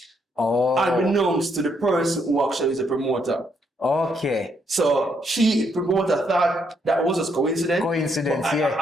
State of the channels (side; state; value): both; normal; correlation 0.74